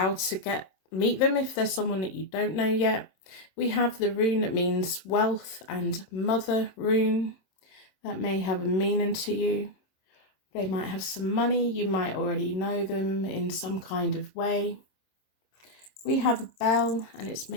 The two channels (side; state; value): right; late; 26 ms